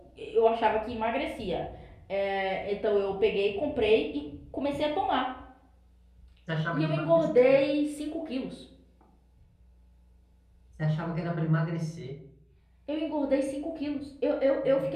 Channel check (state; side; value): identical; both; correlation 1.00